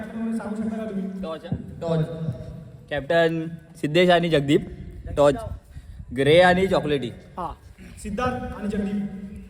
म्हणून सांगू शकता का तुम्ही? टॉच कॅप्टन सिद्धेश आणि जगदीप. टॉच ग्रे आणि चॉकलेटी. हा सिद्धार्थ आणि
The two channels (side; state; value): both; identical; correlation 1.00